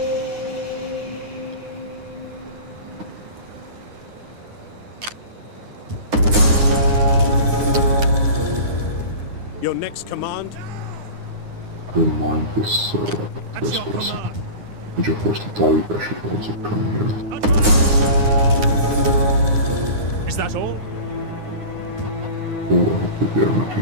Your next command? Don't mind this trespassing. Which of course the Taliban should also come here. Is that all? Oh, I hope that they are not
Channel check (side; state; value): left; late; 9.6 ms